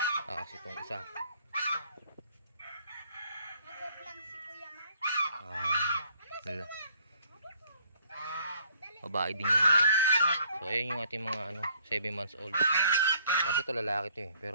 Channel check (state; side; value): inverted; both; correlation -0.62